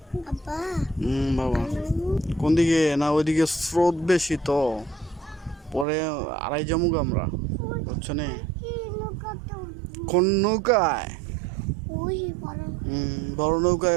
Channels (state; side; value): drops out; left; at 5.9 s